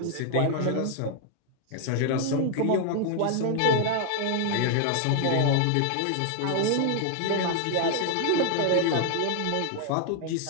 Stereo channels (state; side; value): different; both; correlation 0.00